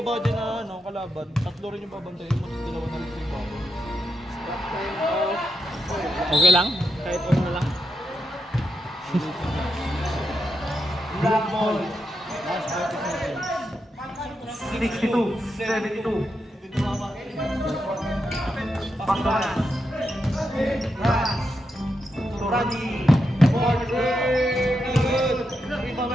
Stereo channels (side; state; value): both; normal; correlation 0.85